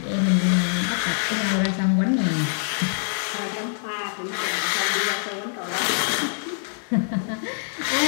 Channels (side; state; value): right; silent; 62 dB below the other